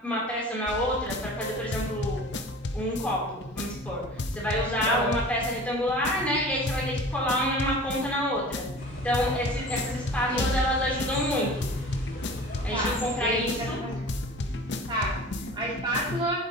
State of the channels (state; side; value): normal; both; correlation 0.41